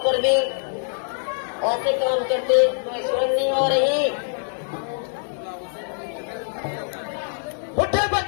भी ऐसे काम करते कोई शर्म नहीं हो रही? उठे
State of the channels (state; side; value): silent; right; digital silence